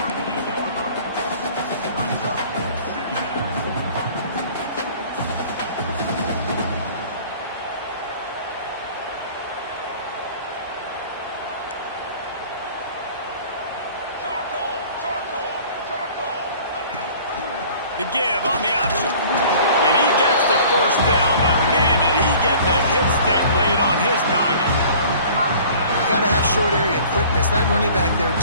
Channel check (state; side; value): inverted; both; correlation -0.48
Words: The give on the option. And he gets the 1st down, but man, did he get the hit stick laid on his noggin. You got to have short area quickness. That running back there